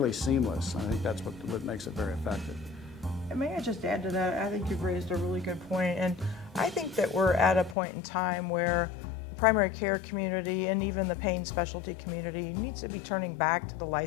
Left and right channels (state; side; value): drops out; right; at 7.8 s